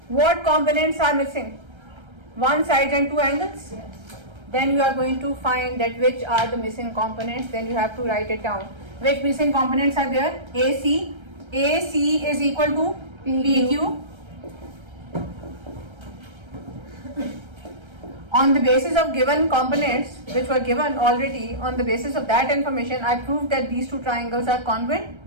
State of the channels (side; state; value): left; late; 1.3 ms